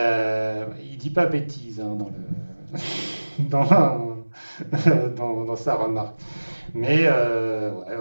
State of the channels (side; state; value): both; inverted; correlation -1.00